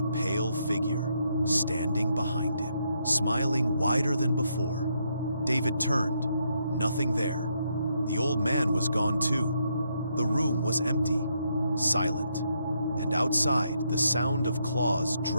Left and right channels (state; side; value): inverted; both; correlation -0.77